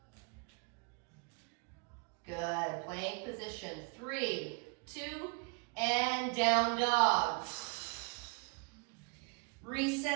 Good. Plank position. 3, 2, and down dog.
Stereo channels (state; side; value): quieter; left; 32.7 dB